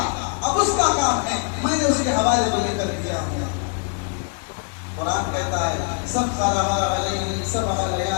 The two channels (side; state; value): right; quieter; 39.4 dB